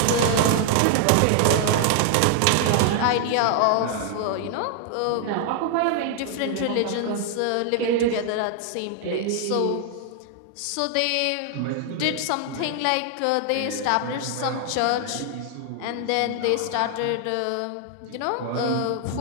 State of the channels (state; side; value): different; both; correlation 0.00